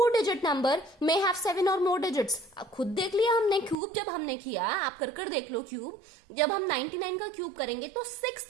digit number may have 7 और मोर डिजिट्स. खुद देख लिया हमने क्यूब जब हमने किया. आप कर देख लो क्यूब. जब हम 99 का क्यूब करेंगे तो 6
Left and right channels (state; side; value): drops out; left; at 3.8 s